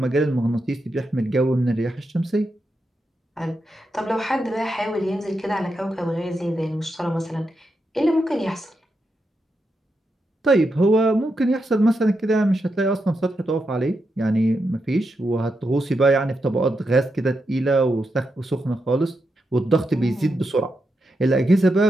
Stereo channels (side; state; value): both; normal; correlation 0.85